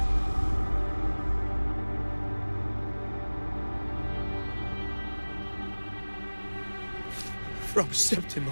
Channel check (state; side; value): inverted; both; correlation -1.00